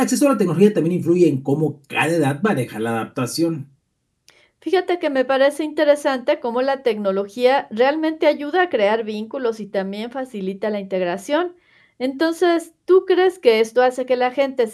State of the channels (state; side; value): identical; both; correlation 1.00